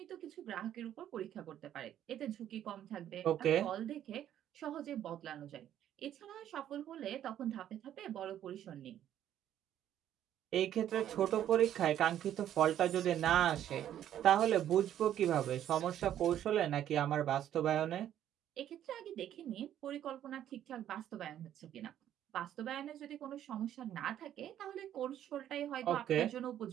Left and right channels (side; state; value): left; quieter; 11.1 dB